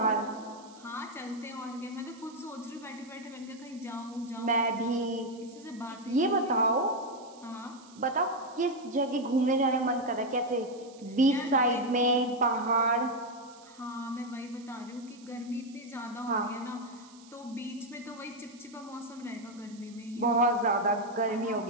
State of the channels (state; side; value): noise; right; hiss, 24 dB below the sound